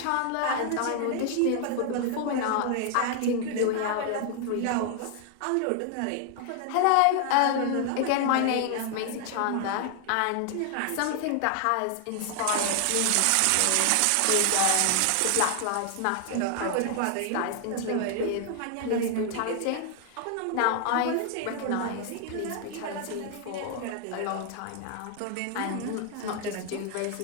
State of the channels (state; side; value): different; both; correlation 0.00